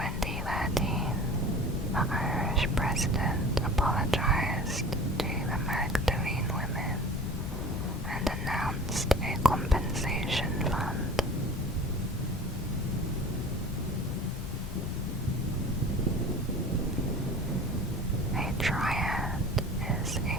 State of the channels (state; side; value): normal; both; correlation 0.40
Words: the Irish president apologized to the Magdalene women and announced a compensation fund. A triad is